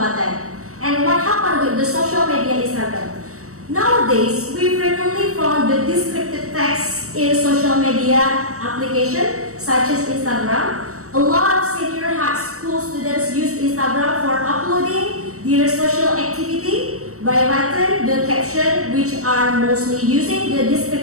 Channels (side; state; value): left; late; 0.65 ms